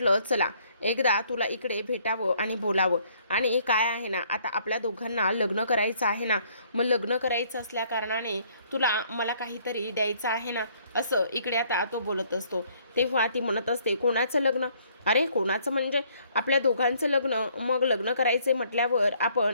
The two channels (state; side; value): inverted; both; correlation -0.64